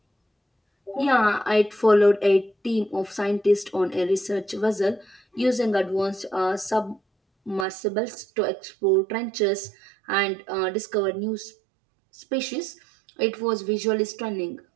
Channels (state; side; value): drops out; left; at 7.7 s